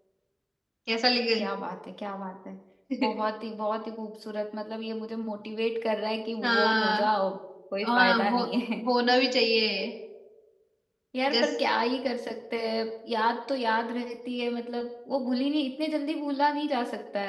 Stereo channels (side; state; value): both; identical; correlation 1.00